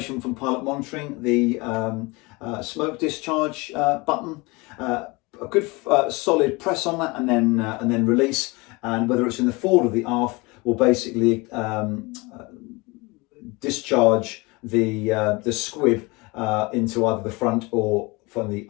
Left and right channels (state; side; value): quieter; right; 25.1 dB